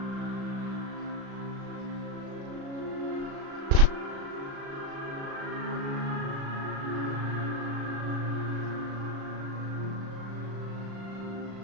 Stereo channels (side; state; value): left; late; 36 ms